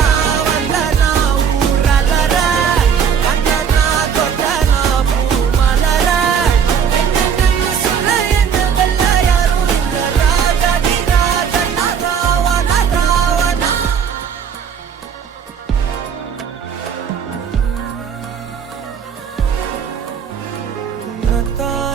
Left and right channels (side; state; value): left; quieter; 7.3 dB